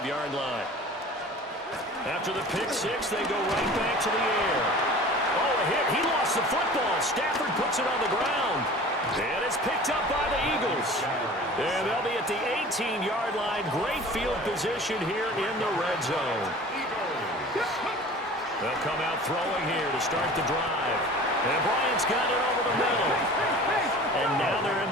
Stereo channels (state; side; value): normal; both; correlation 0.42